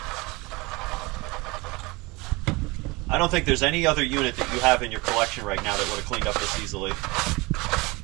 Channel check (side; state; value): left; quieter; 24.2 dB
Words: I don't think there's any other unit that you have in your collection right now that would have cleaned up this easily.